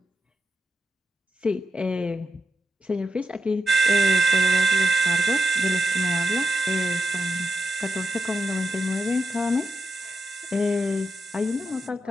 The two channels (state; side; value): normal; both; correlation 0.86